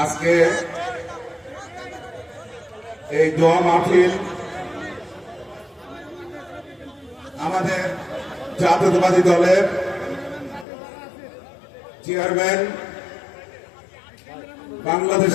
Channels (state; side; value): drops out; right; at 10.7 s